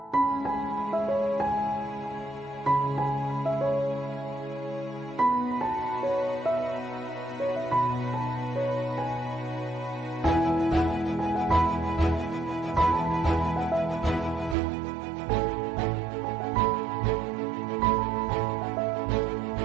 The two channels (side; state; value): left; drops out; at 14.6 s